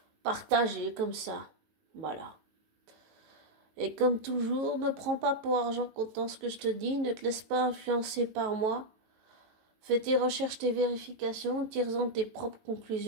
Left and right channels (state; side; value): late; left; 19 ms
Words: partager comme ça. Voilà. Et comme toujours, ne prends pas pour argent comptant ce que je te dis, ne te laisse pas influencer par moi. Fais tes recherches, tes vérifications, tire-en tes propres